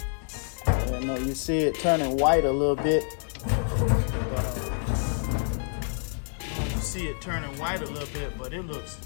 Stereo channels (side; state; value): right; silent; 60 dB below the other